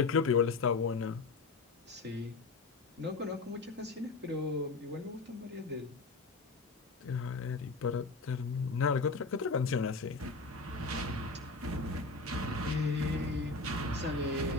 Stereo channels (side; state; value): right; quieter; 3.8 dB